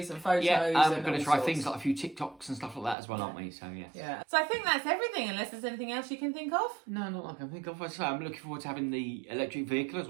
and photos. Yeah, we're going to try things like a few TikToks and stuff like that as well, aren't we? So, yes. Yeah. So I think that's everything, unless there's anything else you can think of. No, not that I can think of. So I'm looking forward to having the electric vehicle as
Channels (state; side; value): drops out; left; at 3.0 s